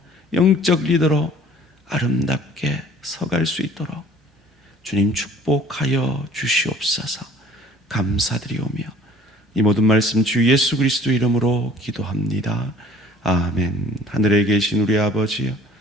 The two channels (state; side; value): normal; both; correlation 0.53